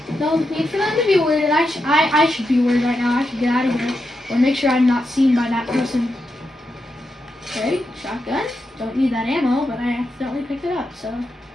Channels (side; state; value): both; normal; correlation 0.86